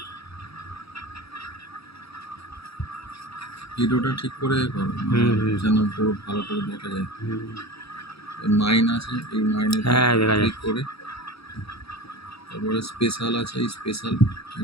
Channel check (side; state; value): right; late; 0.77 ms